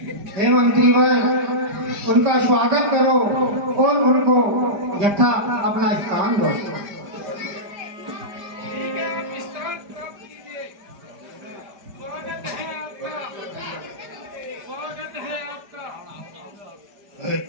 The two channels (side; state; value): left; late; 5.0 ms